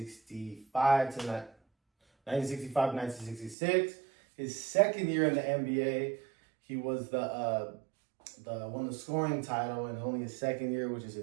to 1966. His second year in the NBA, he was won the scoring title in only his second year, which is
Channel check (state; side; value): drops out; left; at 3.6 s